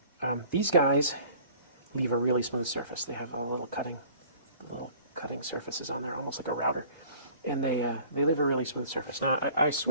them. These guys leave a really smooth surface. They have a little cutting surfaces on there, almost like a router, and they leave a really smooth surface. Now I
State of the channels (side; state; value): both; inverted; correlation -0.50